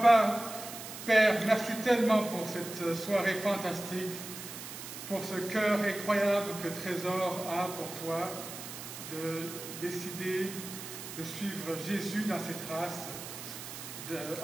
Père, merci tellement pour cette soirée fantastique, pour ce cœur incroyable que Trésor a pour toi, de décider de suivre Jésus dans ses traces,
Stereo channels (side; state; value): right; noise; hiss, 10 dB below the sound